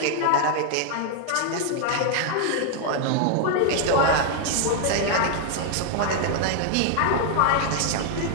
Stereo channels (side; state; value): both; different; correlation 0.00